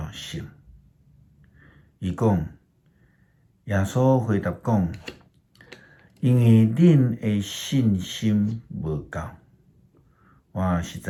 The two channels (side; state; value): both; identical; correlation 1.00